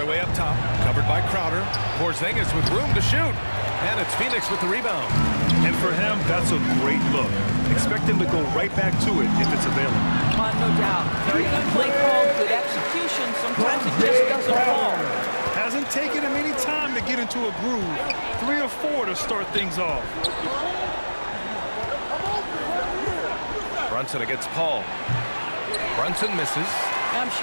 up top, covered by Crowder. Porzingis with room to shoot. And it's Phoenix with the rebound. And for him, that's a great look. Expect him to go right back to it if it's available. No doubt. Very good play call, good execution. Sometimes it just doesn't fall. Hasn't taken him any time to get into a groove. 3 or 4 to start things off. Brunson against Paul. Brunson misses. I'm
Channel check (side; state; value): both; inverted; correlation -1.00